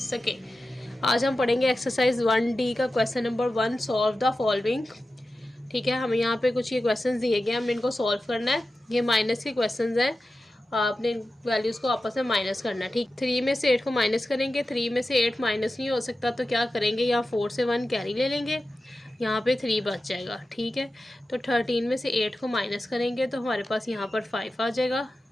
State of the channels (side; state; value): both; normal; correlation 0.93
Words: आज हम पढ़ेंगे एक्सरसाइज 1D का question number 1, solve the following. ठीक है, हमें यहाँ पे कुछ ये क्वेश्चन दिए गए, हमने इनको सॉल्व करना है। ये माइनस के क्वेश्चन हैं, आपने वैल्यूज़ को आपस में माइनस करना है। ठीक, 3 में से 8 को माइनस करेंगे। 3 में से 8 माइनस नहीं हो सकता तो क्या करेंगे, यहाँ 4 से 1 कैरी ले लेंगे, यहाँ पे 3 बच जाएगा। ठीक है, तो 13 में से 8 को माइनस करेंगे तो हमारे पास यहाँ पर 5 आ जाएगा।